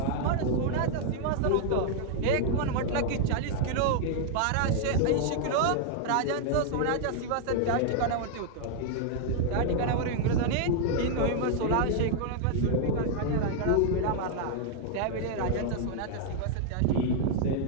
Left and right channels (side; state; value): both; different; correlation 0.00